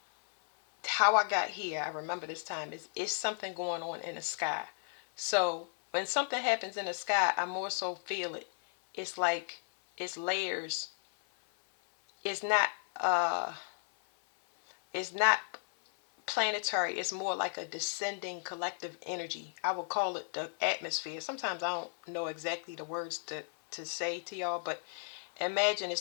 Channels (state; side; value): silent; right; 55 dB below the other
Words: how I got here, I remember this time is something going on in the sky. So when something happens in the sky, I more so feel it. It's like it's layers. It's not uh it's not planetary. It's more like a descending collective energy. I would call it the atmosphere. Sometimes I don't know exactly the words to say to y'all, but imagine